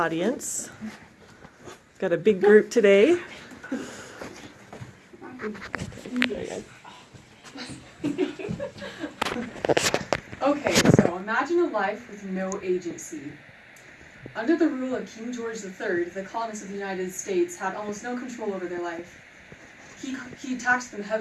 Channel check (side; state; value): both; identical; correlation 1.00